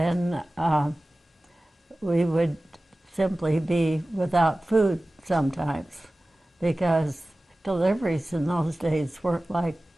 we would simply be without food sometimes, because deliveries in those days weren't like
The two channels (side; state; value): both; normal; correlation 0.97